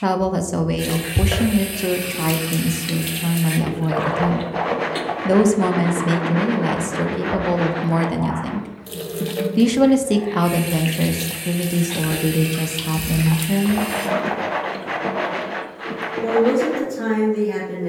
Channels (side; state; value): both; identical; correlation 1.00